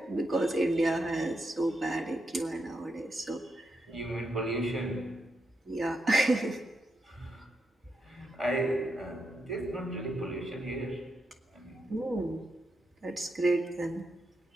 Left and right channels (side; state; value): both; normal; correlation 0.84